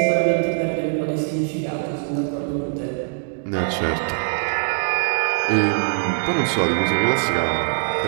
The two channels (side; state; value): left; silent; digital silence